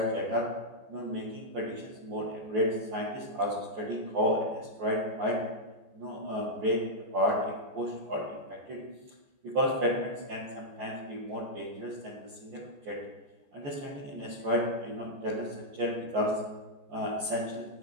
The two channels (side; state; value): left; late; 14 ms